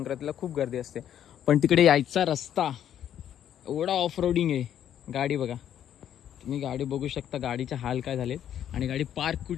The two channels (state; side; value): quieter; right; 10.2 dB